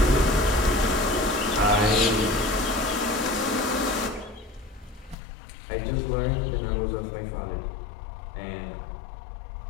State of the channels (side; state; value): right; drops out; at 5.2 s